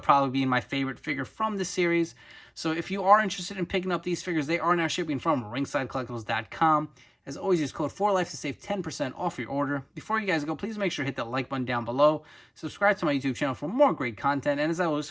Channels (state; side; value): identical; both; correlation 1.00